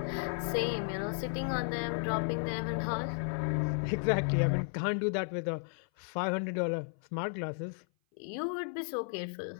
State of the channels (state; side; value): silent; right; 55 dB below the other